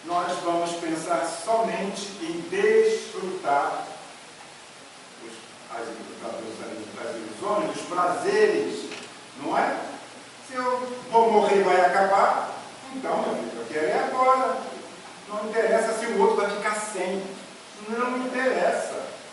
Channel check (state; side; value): identical; both; correlation 1.00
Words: nós vamos pensar somente em desfrutar as ilusões, os prazeres, não é? Se eu vou morrer e vai acabar, então, meu filho, eu quero é agora. Não interessa se o outro vai ficar sem. Não me interessa.